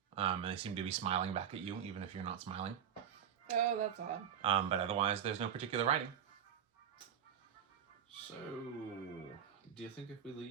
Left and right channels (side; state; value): left; quieter; 8.8 dB